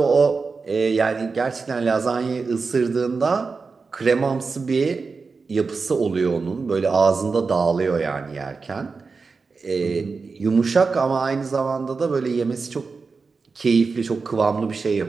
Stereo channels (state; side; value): quieter; left; 4.6 dB